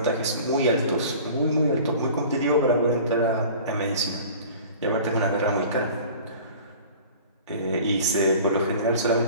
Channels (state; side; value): inverted; both; correlation -0.43